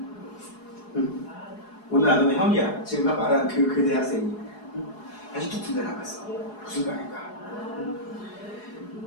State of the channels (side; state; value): right; late; 4.8 ms